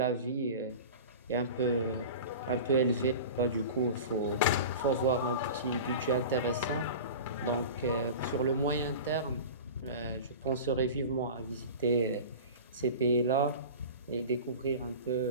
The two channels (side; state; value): both; inverted; correlation -0.34